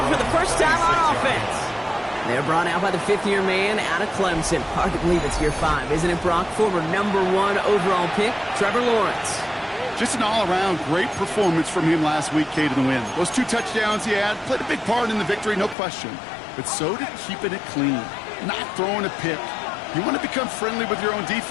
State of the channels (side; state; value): right; drops out; at 15.8 s